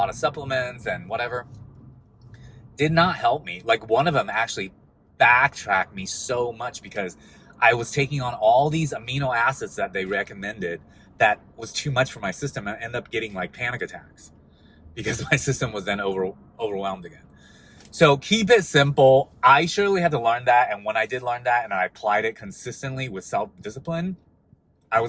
of supplements and whatever. Did not help me. Like, one of them actually backtracked me so much because I was taking on all these amino acids that they recommended that was too much for my system. I ended up getting like panic attacks because my system was then overwhelmed again. So keep it simple. I surely had to learn that. And when I did learn that and I applied it consistently with self-discipline, I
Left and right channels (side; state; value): both; identical; correlation 1.00